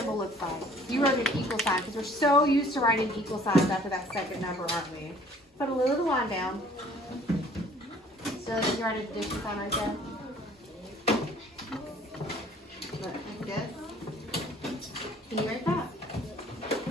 looks like. You wrote an equal sign because we're so used to writing equal signs after that second number, aren't we? Put a little line down. So you write an addition sign right there. Look, like this. Can you write that?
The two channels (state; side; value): normal; both; correlation 0.55